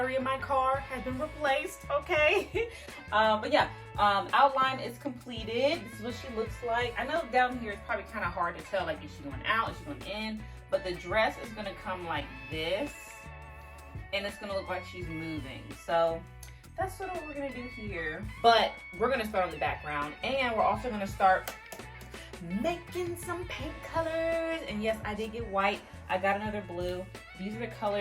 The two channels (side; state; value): both; identical; correlation 1.00